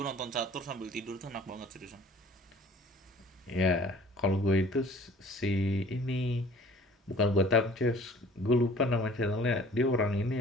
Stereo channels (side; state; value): both; normal; correlation 0.50